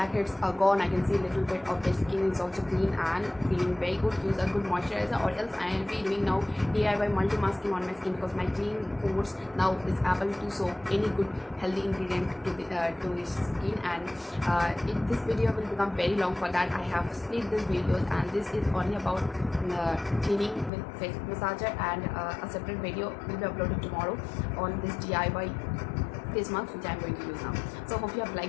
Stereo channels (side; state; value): right; drops out; at 20.7 s